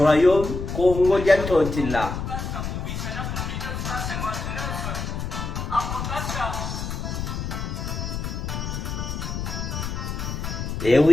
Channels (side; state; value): left; noise; rumble, 4 dB below the sound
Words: congolien Totila. Et